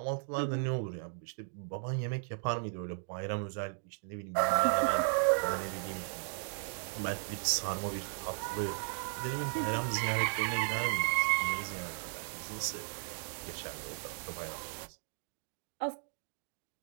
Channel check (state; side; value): silent; left; digital silence